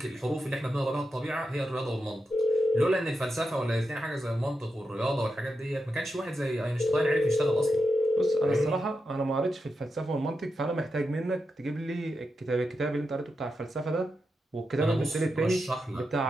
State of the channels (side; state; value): both; normal; correlation 0.88